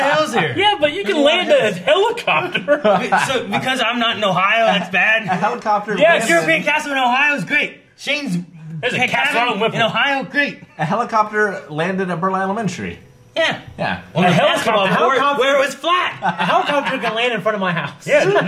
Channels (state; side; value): identical; both; correlation 1.00